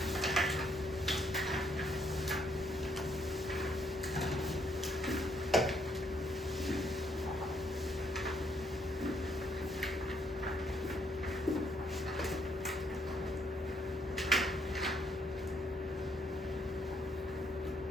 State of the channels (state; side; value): normal; both; correlation 0.71